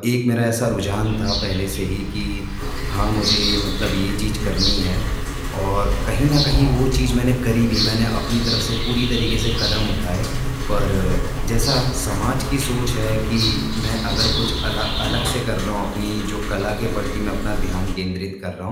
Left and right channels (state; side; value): identical; both; correlation 1.00